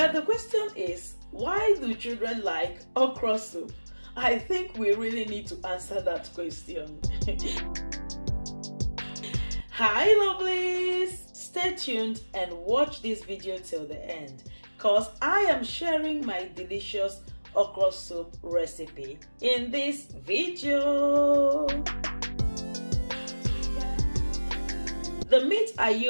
the question is, why do children like okra soup? I think we really need to answer that question. Hi lovelies! Stay tuned and watch this video till the end, cause I am sharing my delicious okra soup recipe in this video. The meat I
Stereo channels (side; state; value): both; inverted; correlation -1.00